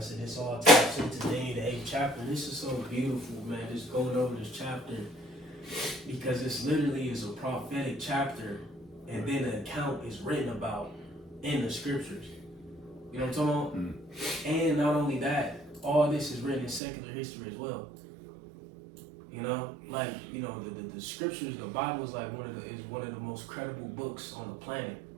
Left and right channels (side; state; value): left; drops out; at 16.8 s